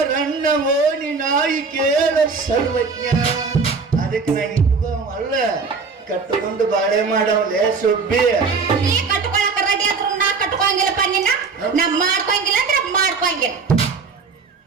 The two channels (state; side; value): quieter; left; 4.8 dB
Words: ಓಣಿ ನಾಯಿ ಕೇಳ ಸರ್ವಜ್ಞ ಅದಕ್ಕೆ ನಾ ಇಟ್ಕೋ ಅಲ್ಲ ಕಟ್ಟುಕೊಂಡು ಬಾಳೆ ಮಾಡವಲೆ ಸುಬ್ಬಿ ನೀ ಕಟ್ಕೊಳಕ ರೆಡಿ ಆದ್ರು ನಾ ಕಟ್ಕೊಂಗಿಲ್ಲಪ್ಪ ನಿನ್ನ ನಾ ಮಾಡ್ಕೊಂಗಿಲ್ಲ ಅಂದ್ರೆ ಮಾಡ್ಕೊಂಗಿಲ್ಲ